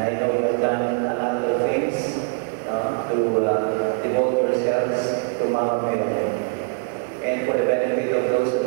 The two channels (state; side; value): silent; left; digital silence